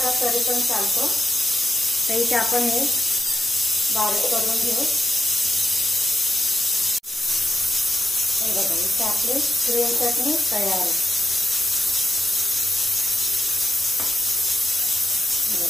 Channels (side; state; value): both; normal; correlation 0.89